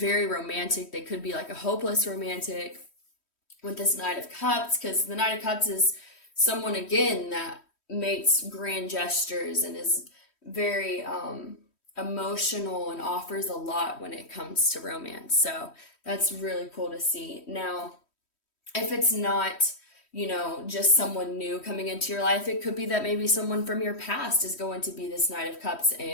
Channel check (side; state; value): right; late; 3.1 ms